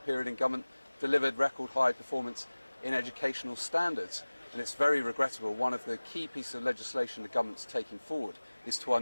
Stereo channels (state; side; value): inverted; both; correlation -1.00